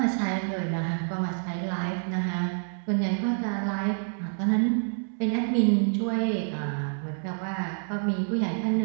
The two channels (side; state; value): left; silent; 60 dB below the other